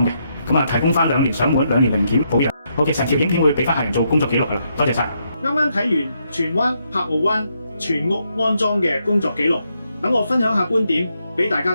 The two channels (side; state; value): both; inverted; correlation -0.78